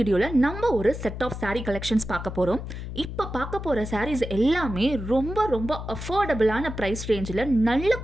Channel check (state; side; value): noise; left; hum, 8 dB below the sound